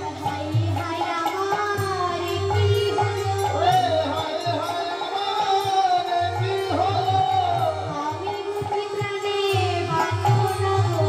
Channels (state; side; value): identical; both; correlation 1.00